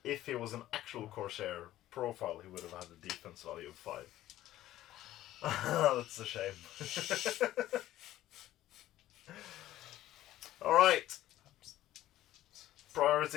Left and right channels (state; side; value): quieter; right; 14.2 dB